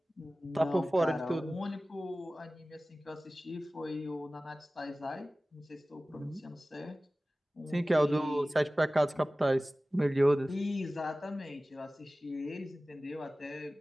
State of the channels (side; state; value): both; normal; correlation 0.97